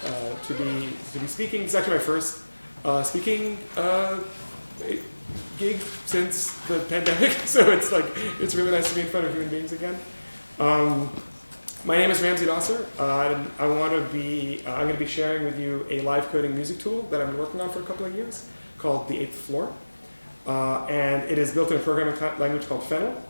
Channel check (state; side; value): inverted; both; correlation -1.00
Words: be speaking. It's actually my first speaking gig since the pandemic, so it's really nice to be in front of human beings again. My name is Ramsey Nasser. I'm going to be sharing with you a live coding music tool that I've been working on for a couple of years called the 8th Floor. And it is built in a programming language called Fennel,